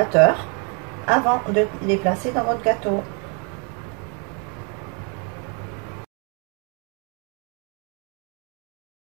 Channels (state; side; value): quieter; left; 37.7 dB